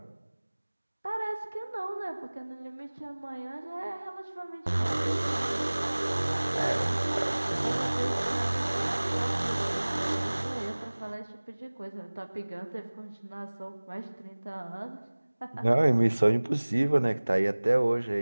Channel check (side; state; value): both; inverted; correlation -1.00